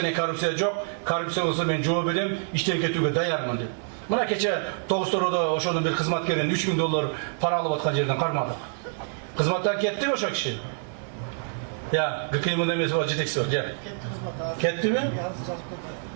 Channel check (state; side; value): silent; left; digital silence